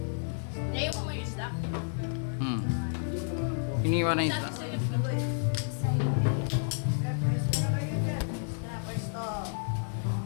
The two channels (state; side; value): silent; right; 56 dB below the other